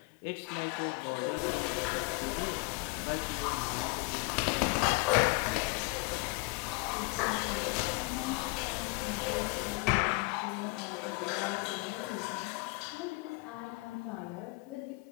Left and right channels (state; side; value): quieter; right; 26.0 dB